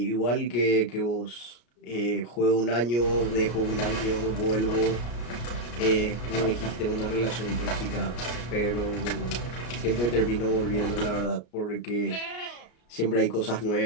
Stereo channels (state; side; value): late; right; 33 ms